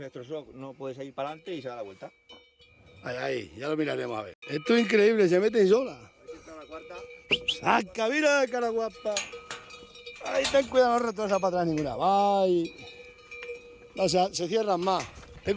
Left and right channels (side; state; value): both; identical; correlation 1.00